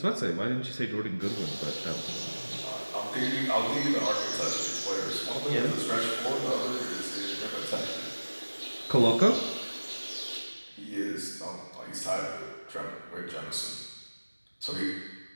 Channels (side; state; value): both; inverted; correlation -1.00